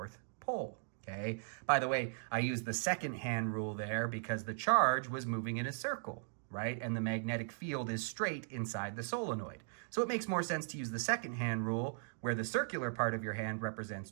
pole, okay? By the way, I used the second hand rule there because the charge was moving in a circle, right? And the magnetic field is straight inside the solenoid. So it makes more sense to use the second hand rule where the circular part of your hand represents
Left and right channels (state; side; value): silent; left; digital silence